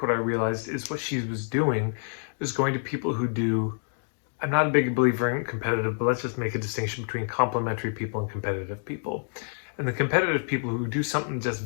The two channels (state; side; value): silent; right; 60 dB below the other